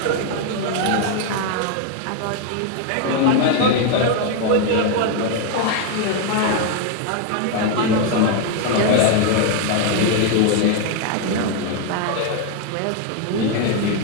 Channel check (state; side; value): different; both; correlation 0.01